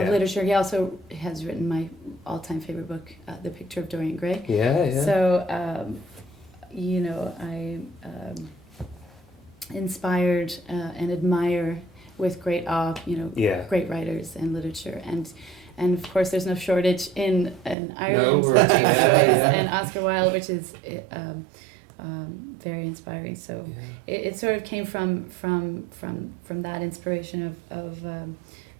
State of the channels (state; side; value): drops out; left; at 17.8 s